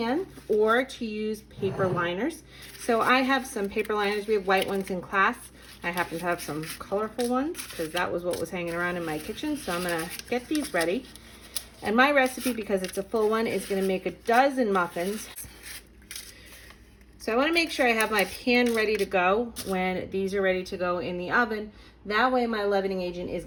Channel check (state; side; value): identical; both; correlation 1.00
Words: or to use paper liners. So I have some paper liners. We have white ones in class. I happen to have some colorful ones because that was what was hanging around in my kitchen. So I'm gonna get these ready. And my recipe, because it's a full one, is gonna make a dozen muffins. So I wanna make sure I have my pan ready to go when these are ready to go in the oven. That way my leavening agent is